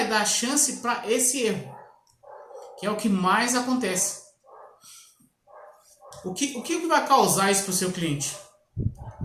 dar chance para esse erro, que é o que mais acontece. O que vai causar isso para o seu cliente?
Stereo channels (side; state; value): both; identical; correlation 1.00